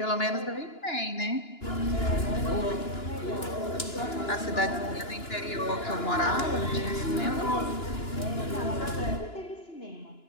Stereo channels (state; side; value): late; right; 2.9 ms